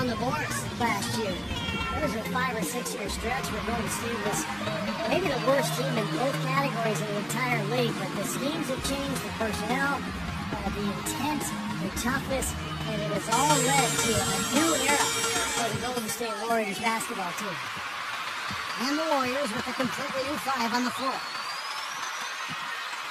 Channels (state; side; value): identical; both; correlation 1.00